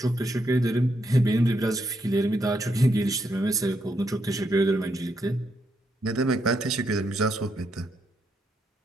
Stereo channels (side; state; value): both; normal; correlation 0.79